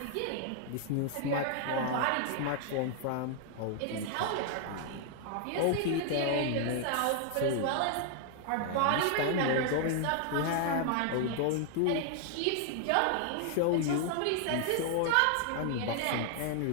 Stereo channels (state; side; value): different; both; correlation 0.00